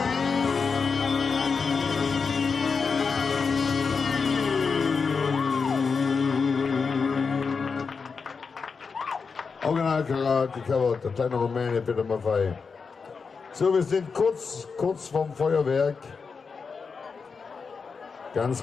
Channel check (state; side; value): quieter; right; 5.2 dB